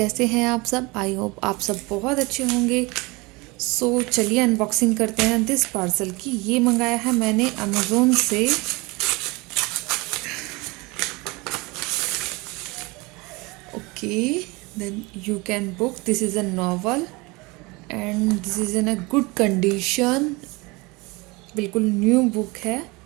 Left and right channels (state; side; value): quieter; left; 25.2 dB